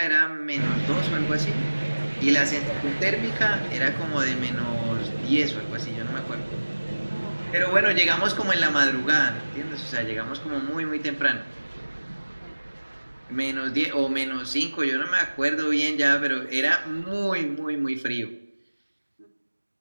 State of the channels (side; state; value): both; inverted; correlation -1.00